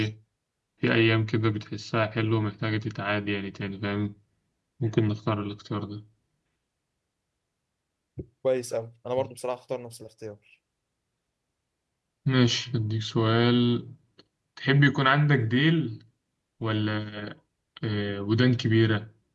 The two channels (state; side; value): identical; both; correlation 1.00